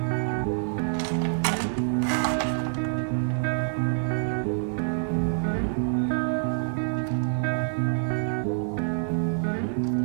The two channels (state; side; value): silent; left; digital silence